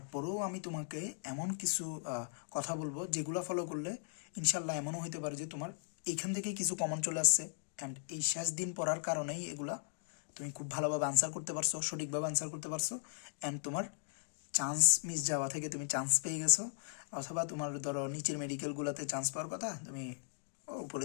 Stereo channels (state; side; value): silent; right; digital silence